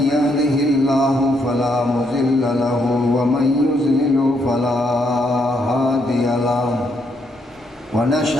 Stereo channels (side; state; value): both; normal; correlation 0.75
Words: يهده الله فلا مضل له ومن يضلل فلا هادي له